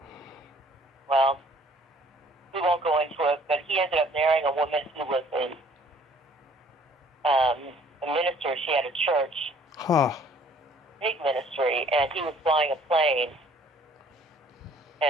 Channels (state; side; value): normal; both; correlation 0.57